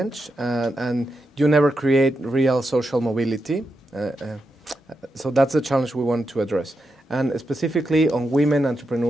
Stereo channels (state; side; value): normal; both; correlation 0.86